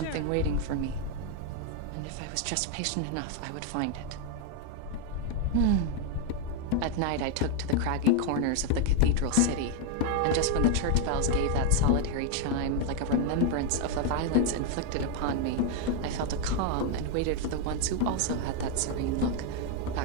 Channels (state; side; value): different; both; correlation 0.01